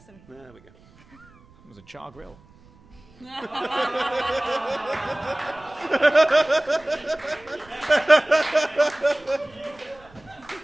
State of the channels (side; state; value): right; noise; rumble, 27 dB below the sound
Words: There we go. It was a char grill.